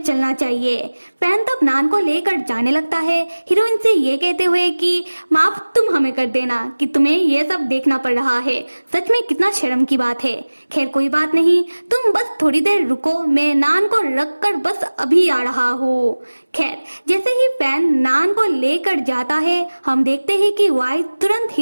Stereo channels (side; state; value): both; inverted; correlation -1.00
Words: चलना चाहिए। फैन तब नान को लेकर जाने लगता है, हीरोइन से ये कहते हुए कि माफ तुम हमें कर देना कि तुम्हें ये सब देखना पड़ रहा है, सच में कितना शर्म की बात है। खैर कोई बात नहीं, तुम बस थोड़ी देर रुको, मैं नान को रख कर बस अभी आ रहा हूँ। खैर जैसे ही फैन नान को लेकर जाता है हम देखते हैं कि वाई तुरंत